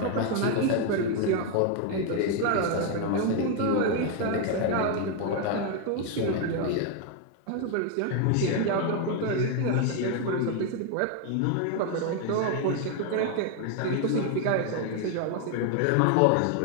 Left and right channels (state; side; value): different; both; correlation 0.01